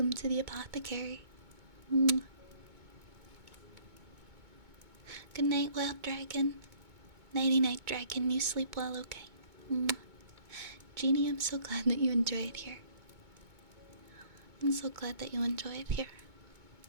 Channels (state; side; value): late; left; 2.2 ms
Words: to the apothecary. Mwah. Good night, wild dragon. Nighty night, dragon. You sleep well, okay? Mwah. Jeannie, I'm so glad that you enjoy it here. I'm so glad that you enjoy it here.